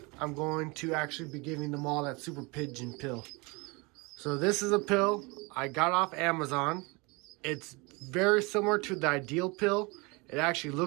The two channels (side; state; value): left; quieter; 27.3 dB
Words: I'm going to actually be giving them all that super pigeon pill. So this is a pill I got off Amazon. It's very similar to the ideal pill. It actually